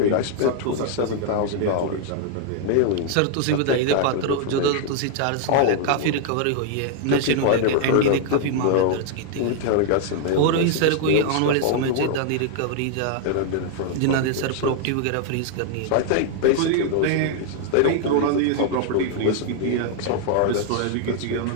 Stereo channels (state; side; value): different; both; correlation -0.01